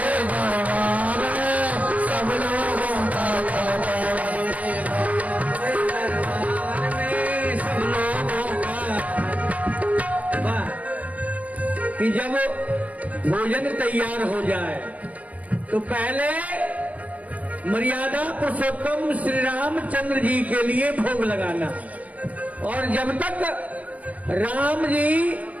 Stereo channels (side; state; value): left; late; 0.070 ms